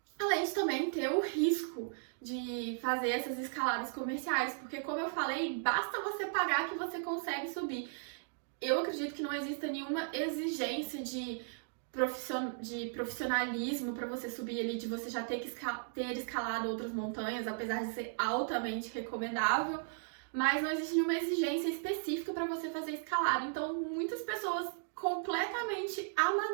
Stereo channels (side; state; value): left; silent; digital silence